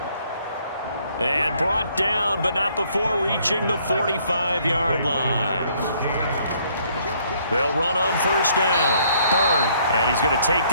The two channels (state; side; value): inverted; both; correlation -0.65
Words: And brought down, but not before reaching the 45-yard line. They'll run on 1st down. Bird. And he's going to take